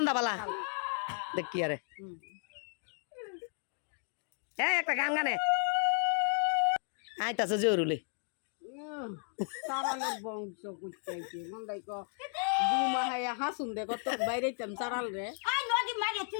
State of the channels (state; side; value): silent; right; 55 dB below the other